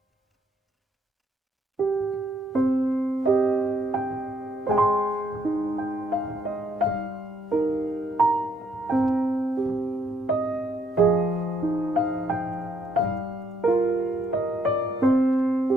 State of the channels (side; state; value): both; normal; correlation 0.70